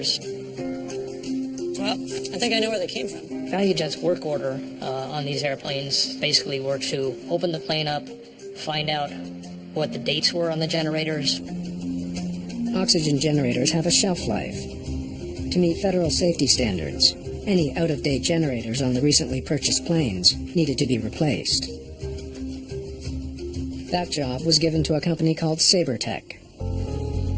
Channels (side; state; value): both; identical; correlation 1.00